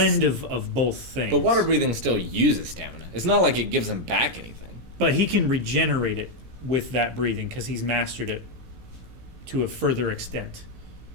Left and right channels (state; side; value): late; left; 17 ms